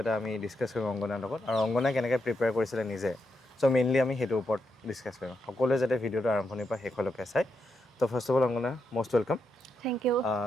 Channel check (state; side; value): normal; both; correlation 0.83